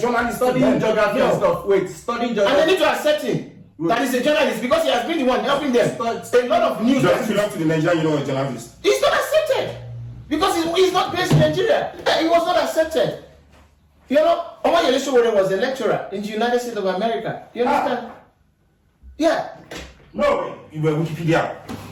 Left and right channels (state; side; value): identical; both; correlation 1.00